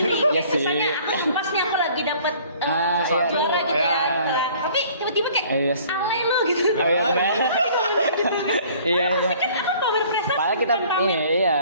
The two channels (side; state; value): both; inverted; correlation -0.54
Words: iya sih. Misalnya aku pas nih aku lagi dapet Sesuatu, juara gitu iya. ya. Nah, tapi tiba-tiba kayak Iya sih. ale lo gitu. Oh, iya, benar. Iya, iya. Kan aku pamer prestasi, Padahal kita bukan pamer ini, iya.